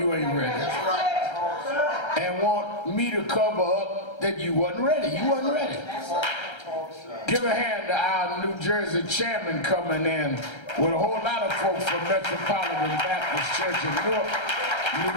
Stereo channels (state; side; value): late; right; 1.3 ms